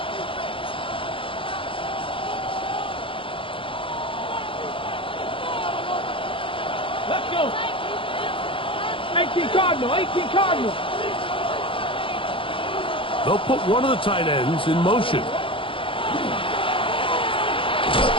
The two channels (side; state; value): right; late; 0.25 ms